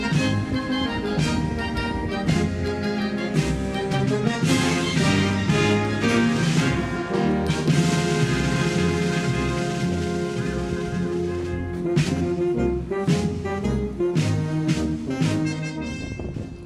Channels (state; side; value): identical; both; correlation 1.00